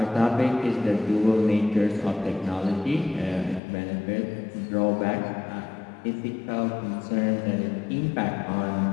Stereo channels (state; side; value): drops out; right; at 3.6 s